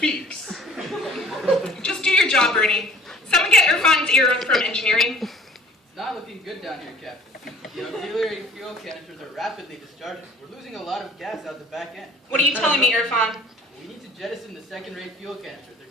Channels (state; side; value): normal; both; correlation 0.51